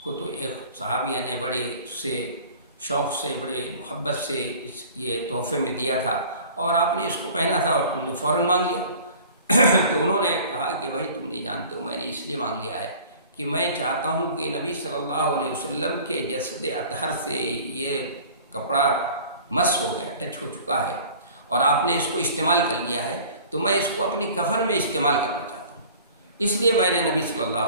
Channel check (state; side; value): inverted; both; correlation -0.46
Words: تو ایک صحابیہ نے بڑے سے شوق سے، بڑے محبت سے یہ تحفے میں دیا تھا، اور آپ نے اس کو پہنا تھا اور تم نے فوراً مانگ لیا۔ تو انہوں نے کہا کہ بھائی تم نہیں جانتے ہو، میں نے اس لیے مانگ لیا ہے کہ میں چاہتا ہوں کہ نبی صلی اللہ علیہ وسلم کے جسد اطہر سے یہ کپڑا مس ہو گیا، ٹچ ہو چکا ہے، اور آپ نے اس کو استعمال کر لیا ہے، تو میں اس کو اپنی کفن میں استعمال کرنا چاہتا ہوں، اس لیے میں نے نبی صلی اللہ